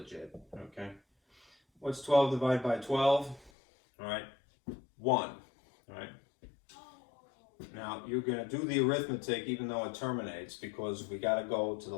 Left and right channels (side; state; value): right; drops out; at 3.5 s